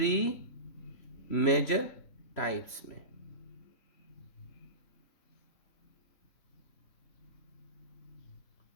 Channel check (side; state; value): right; late; 3.0 ms